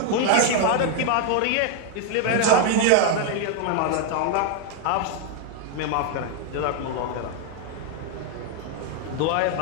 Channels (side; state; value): both; different; correlation 0.00